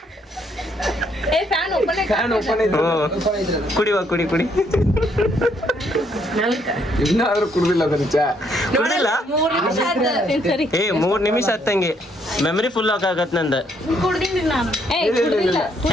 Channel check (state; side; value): normal; both; correlation 0.70